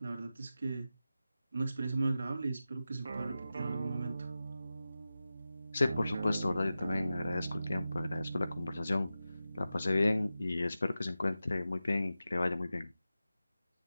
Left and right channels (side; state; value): both; inverted; correlation -0.93